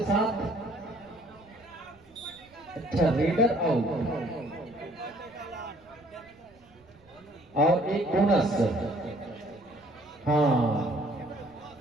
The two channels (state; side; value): noise; right; rumble, 29 dB below the sound